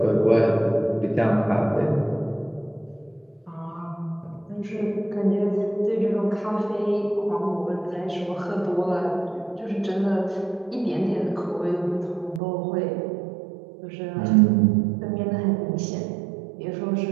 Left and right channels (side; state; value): left; drops out; at 12.4 s